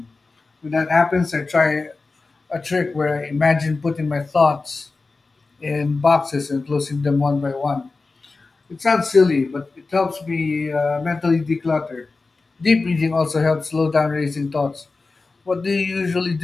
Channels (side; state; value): right; quieter; 3.8 dB